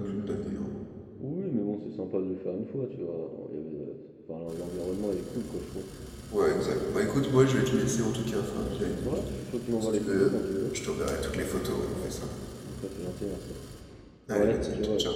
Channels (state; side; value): identical; both; correlation 1.00